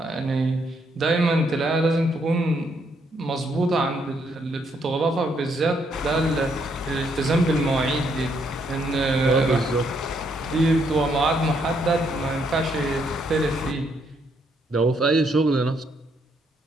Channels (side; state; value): both; normal; correlation 0.73